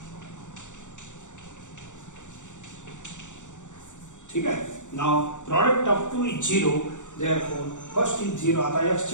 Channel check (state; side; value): late; right; 0.85 ms